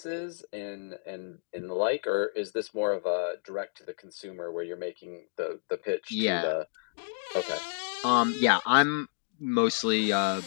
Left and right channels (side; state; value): right; silent; digital silence